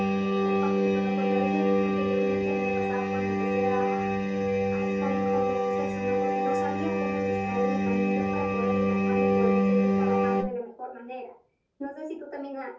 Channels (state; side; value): identical; both; correlation 1.00